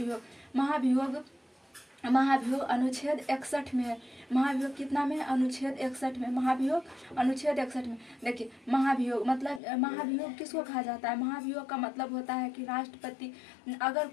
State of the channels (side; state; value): right; drops out; at 9.6 s